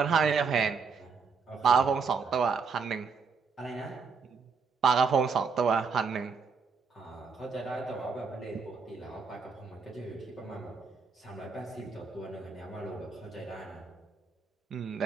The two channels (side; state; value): left; quieter; 5.2 dB